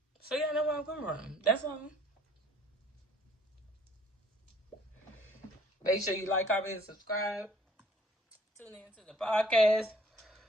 So y'all know where I'm coming from. That's all. Make sure you like, comment, and subscribe. Tune in to the podcast.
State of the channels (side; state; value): both; normal; correlation 0.59